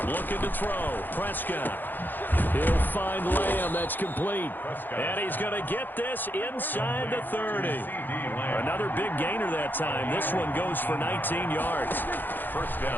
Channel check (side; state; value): right; late; 0.090 ms